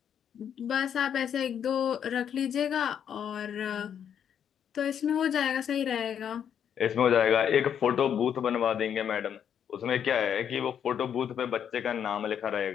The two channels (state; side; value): quieter; right; 8.6 dB